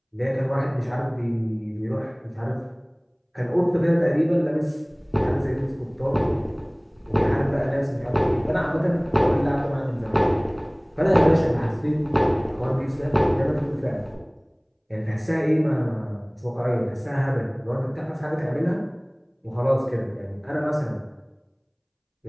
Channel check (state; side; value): identical; both; correlation 1.00